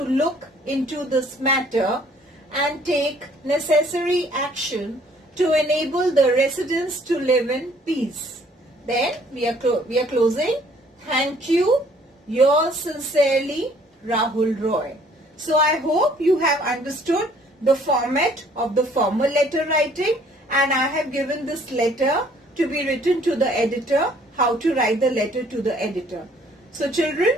look into this matter and take necessary action to enable the residents to live in peace. Then we are closing. Thank you. Yours sincerely, Rahul Roy. So I hope you have understood the format of the formal letter writing, and I have given this letter to be written to the editor, how to write the letter to the editor. So children,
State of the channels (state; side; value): normal; both; correlation 0.60